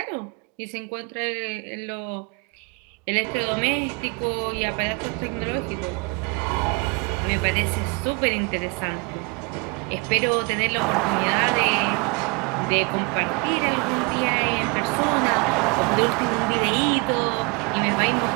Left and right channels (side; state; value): left; quieter; 29.8 dB